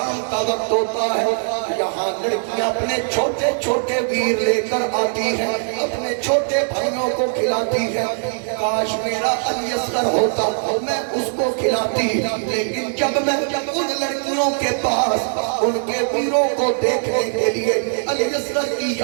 کا وقت ہوتا ہے یہاں لڑکیاں اپنے چھوٹے چھوٹے ویر لے کر آتی ہیں، اپنے چھوٹے بھائیوں کو کھلاتی ہیں۔ کاش میرا علی اصغر ہوتا میں اس کو کھلاتی، لیکن جب میں ان لڑکیوں کے پاس ان کے ویروں کو دیکھنے کے لیے علی اصغر کی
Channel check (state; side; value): silent; left; digital silence